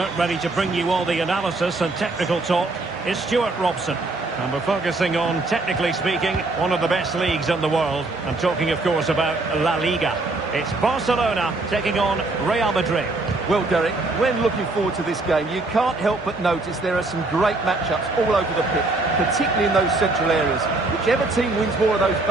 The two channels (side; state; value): left; quieter; 3.2 dB